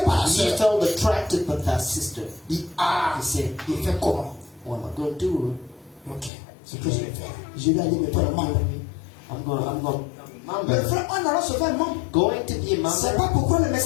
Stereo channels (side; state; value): right; drops out; at 6.3 s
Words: par la he sœur. felt attracted by that sister. Il dit, ah, He said, il fait comment? what am I going to do? Ok, ce que je vais faire. Je vais aller me faire un membre. I'm going Mais member. frère, on allant se faire membre. Going to be a C'est member pas pourquoi le